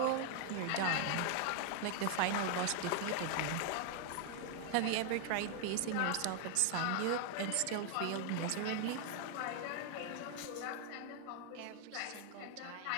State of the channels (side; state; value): both; different; correlation 0.00